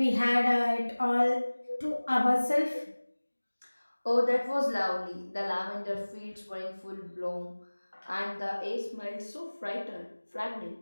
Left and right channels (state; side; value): inverted; both; correlation -1.00